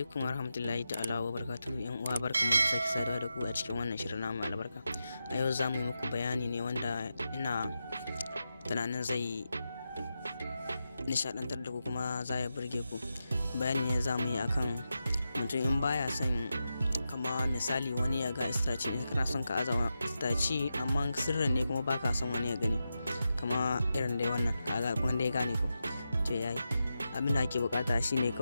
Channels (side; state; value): both; inverted; correlation -0.89